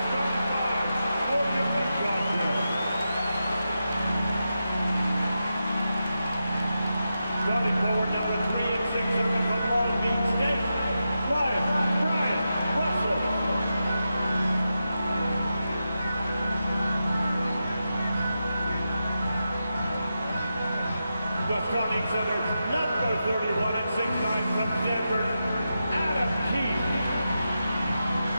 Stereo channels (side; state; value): both; inverted; correlation -0.89